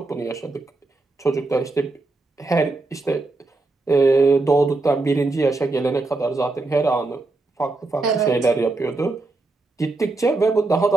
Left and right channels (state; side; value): quieter; left; 3.3 dB